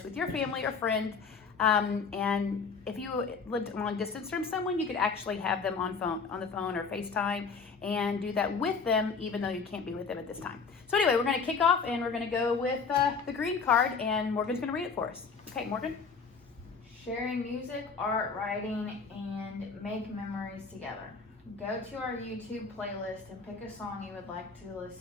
with your family or friend. And if you lived long distance from someone, you could actually have them on the phone or FaceTime and do that with them, even though you can't be with them at this time. So anyway, we're going to kick off, and we're going to go with the green card, and Morgan's going to read it for us. Okay, Morgan. Sharing music, art, writing, and make memories together. Go to our YouTube playlist and pick a song you would like to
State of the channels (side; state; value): right; quieter; 5.1 dB